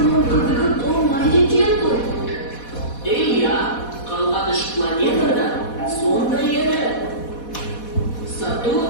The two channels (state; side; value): late; right; 4.1 ms